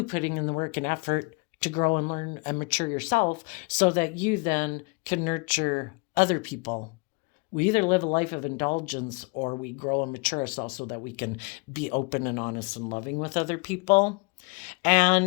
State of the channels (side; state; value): right; quieter; 28.9 dB